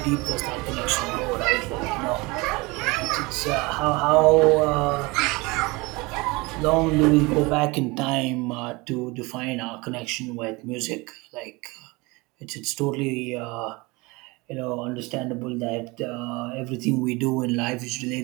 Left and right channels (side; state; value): left; quieter; 24.7 dB